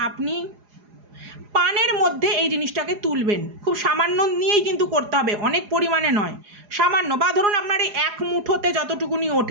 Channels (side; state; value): left; late; 4.9 ms